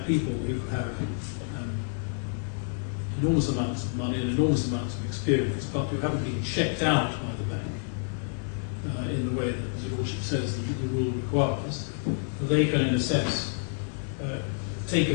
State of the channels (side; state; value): right; silent; digital silence